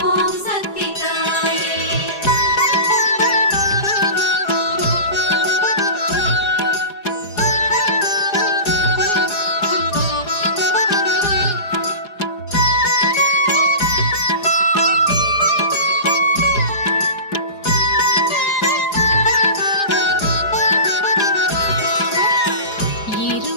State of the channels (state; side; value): late; right; 4.9 ms